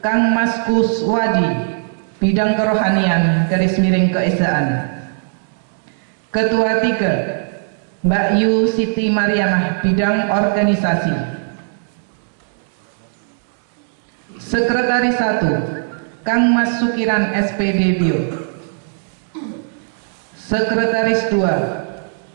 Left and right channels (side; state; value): left; silent; digital silence